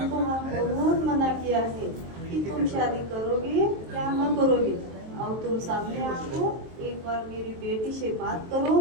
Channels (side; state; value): left; late; 23 ms